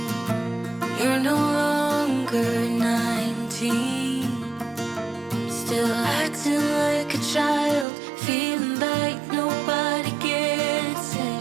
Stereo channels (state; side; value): drops out; left; at 7.9 s